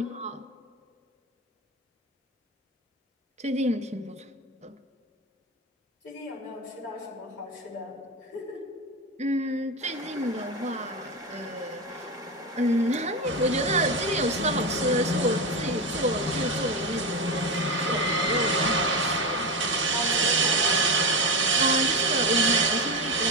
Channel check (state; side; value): normal; both; correlation 0.16